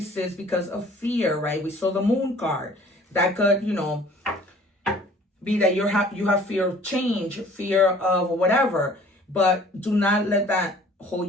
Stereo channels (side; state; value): both; normal; correlation 0.52